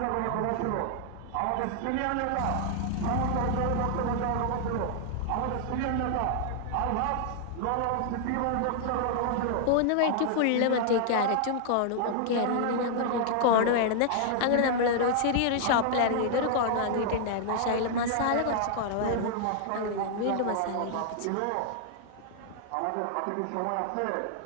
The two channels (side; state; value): both; different; correlation -0.01